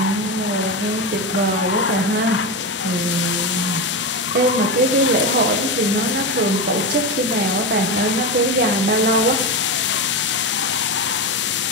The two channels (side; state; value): both; normal; correlation 0.16